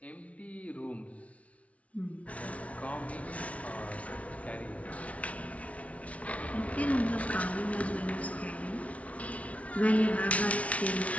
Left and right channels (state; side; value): late; right; 0.065 ms